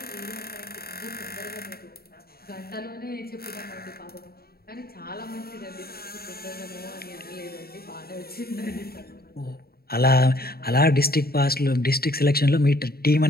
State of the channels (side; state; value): right; late; 0.45 ms